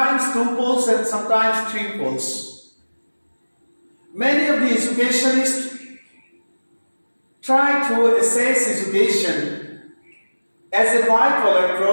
two poles and sometimes three poles. Many of the educationists try to assess education as a bipolar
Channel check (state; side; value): inverted; both; correlation -1.00